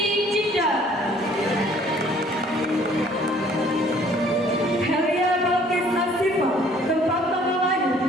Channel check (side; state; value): both; normal; correlation 0.57